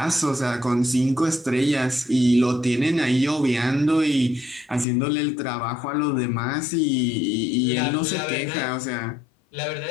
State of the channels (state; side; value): drops out; right; at 4.9 s